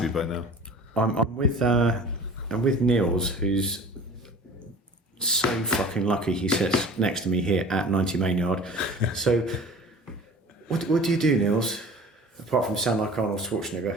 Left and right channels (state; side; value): normal; both; correlation 0.42